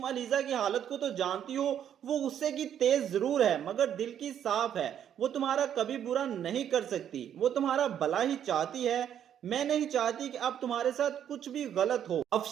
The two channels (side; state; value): left; quieter; 9.6 dB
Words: अलीजा की हालत को तो जानती हो, वो गुस्से की तेज जरूर है मगर दिल की साफ है, वो तुम्हारा कभी बुरा नहीं कर सकती, वो तुम्हारा भला ही चाहती है। मैं नहीं चाहती कि अब तुम्हारे साथ कुछ भी गलत हो।